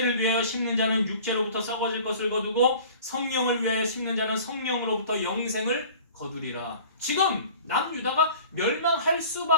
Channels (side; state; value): both; inverted; correlation -0.45